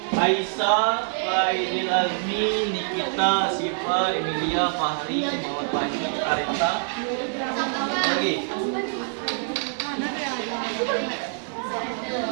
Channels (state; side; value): silent; left; digital silence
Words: Aisyah, Faidil Azmi, Nikita, Siva, Emilia, Fahri, Muhammad Fahmi, Arita. Lagi.